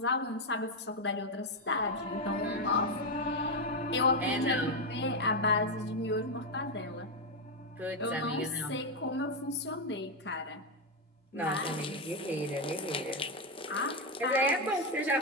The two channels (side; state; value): both; normal; correlation 0.04